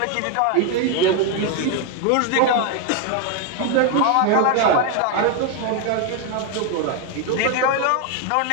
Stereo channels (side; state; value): both; different; correlation 0.01